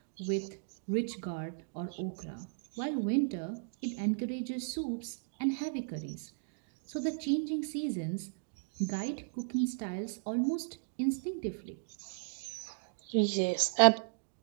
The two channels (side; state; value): left; silent; digital silence